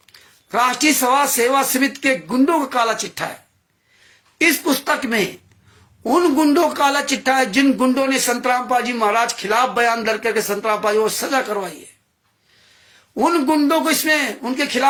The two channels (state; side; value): identical; both; correlation 1.00